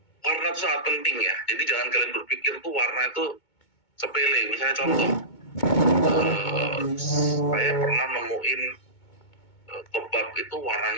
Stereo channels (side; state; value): right; late; 2.2 ms